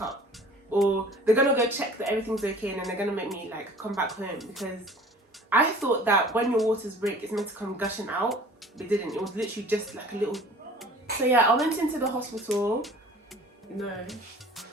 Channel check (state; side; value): normal; both; correlation 0.47